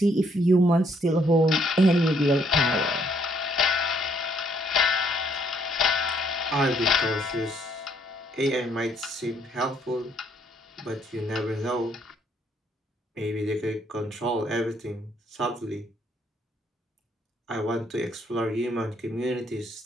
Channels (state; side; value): normal; both; correlation 0.68